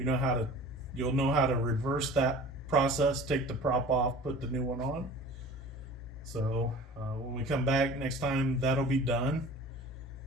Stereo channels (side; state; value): both; normal; correlation 0.42